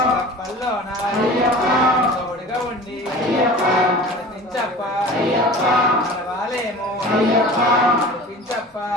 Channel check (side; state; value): both; normal; correlation 0.39